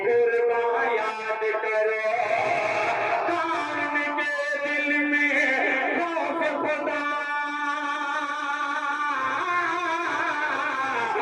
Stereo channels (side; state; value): both; identical; correlation 1.00